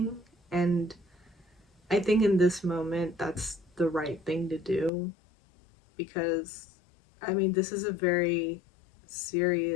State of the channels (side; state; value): right; drops out; at 4.9 s